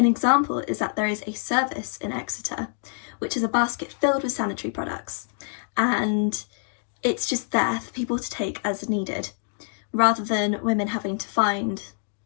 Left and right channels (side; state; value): right; silent; digital silence